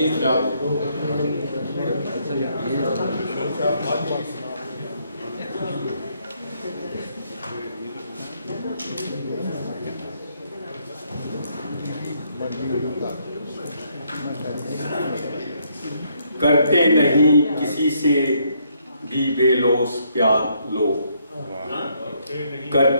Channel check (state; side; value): inverted; both; correlation -0.72